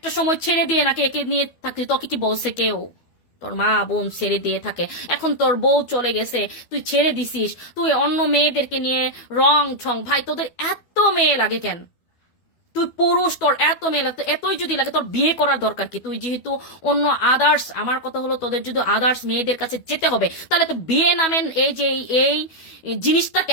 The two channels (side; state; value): right; late; 12 ms